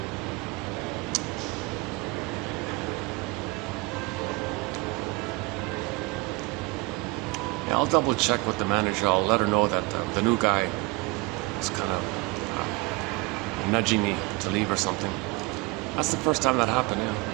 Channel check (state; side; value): quieter; left; 24.2 dB